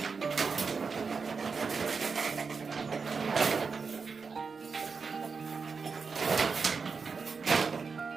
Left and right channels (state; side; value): quieter; left; 5.1 dB